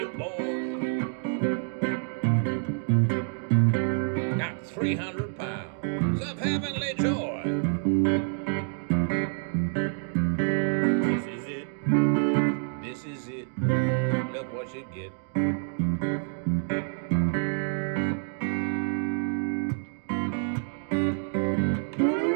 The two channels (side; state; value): left; silent; 60 dB below the other